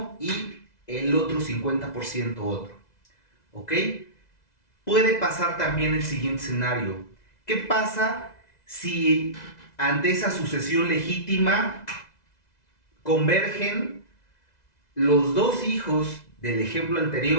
y el otro 50% otro. ¿Ok? Puede pasar también el siguiente escenario. ¿Qué pasa si ante esa sucesión legítima convergen los dos hijos del ejemplo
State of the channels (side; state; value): right; late; 2.0 ms